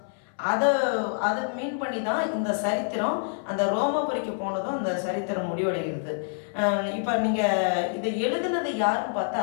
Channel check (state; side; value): silent; right; 60 dB below the other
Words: அதை மீன் பண்ணி தான் இந்த சரித்திரம் அந்த ரோமாபுரிக்கு போனதும் இந்த சரித்திரம் முடிவடைகிறது. இப்போ நீங்கள் இதை எழுதினது யாருன்னு